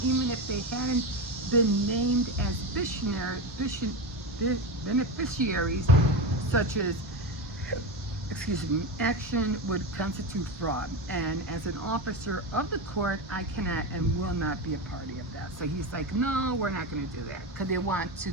even if they hadn't been named as beneficiaries, such as, excuse me, action would constitute fraud. And as an officer of the court, I cannot and will not be a party of that. So he's like, no, we're not going to do that, because they want to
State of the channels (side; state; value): both; normal; correlation 0.18